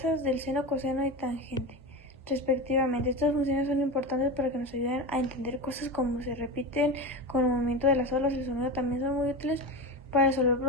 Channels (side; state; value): both; normal; correlation 0.23